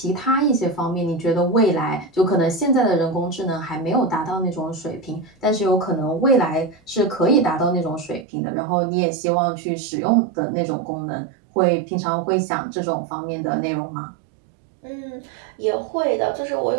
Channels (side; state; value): left; drops out; at 8.2 s